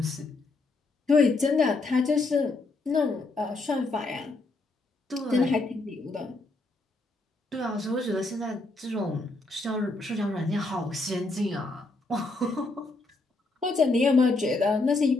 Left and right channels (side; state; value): right; quieter; 3.3 dB